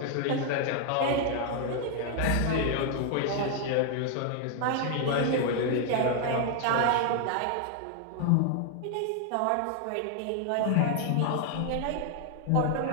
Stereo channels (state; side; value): different; both; correlation 0.00